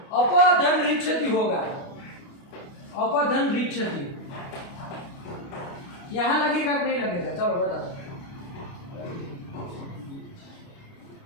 अपधन रिच्छति होगा, अपधन रिच्छति। यहाँ लगेगा कि नहीं लगेगा? चलो बता।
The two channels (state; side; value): late; right; 29 ms